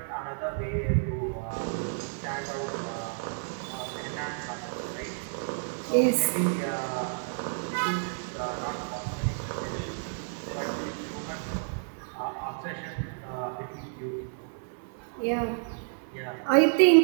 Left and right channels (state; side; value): silent; left; digital silence